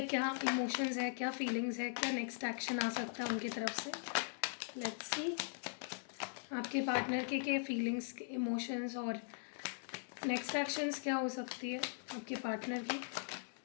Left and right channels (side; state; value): right; silent; 51 dB below the other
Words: क्या इमोशंस है, क्या फीलिंग्स है, क्या नेक्स्ट एक्शन आ सकता है उनकी तरफ से। लेट्स सी आपके पार्टनर के क्या फीलिंग्स, इमोशंस और नेक्स्ट एक्शंस क्या हो सकती है आपके पार्टनर की।